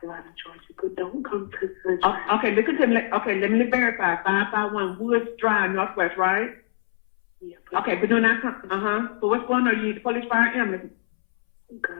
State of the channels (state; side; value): silent; right; 63 dB below the other